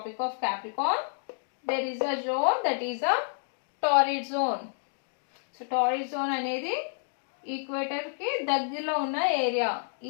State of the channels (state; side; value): silent; right; digital silence